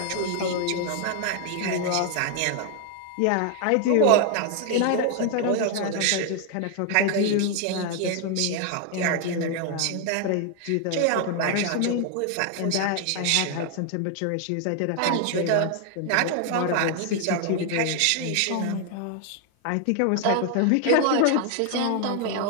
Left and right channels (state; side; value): different; both; correlation 0.00